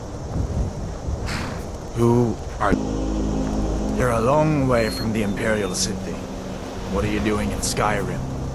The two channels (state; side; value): identical; both; correlation 1.00